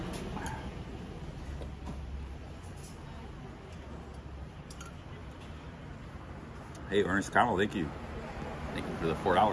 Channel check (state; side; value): identical; both; correlation 1.00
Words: Hey, Ernest Connell, thank you. Thank you for the